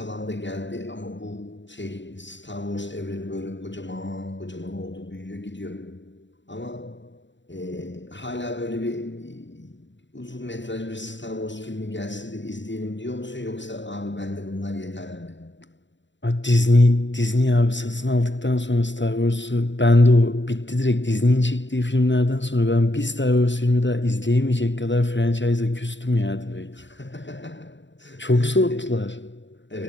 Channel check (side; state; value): right; late; 0.53 ms